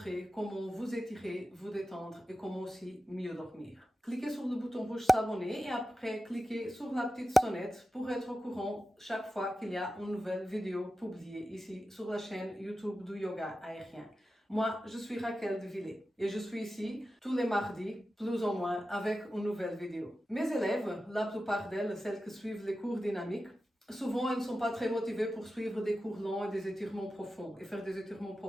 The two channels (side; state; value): both; normal; correlation 0.93